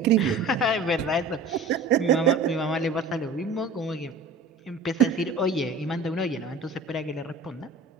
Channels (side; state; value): left; quieter; 3.3 dB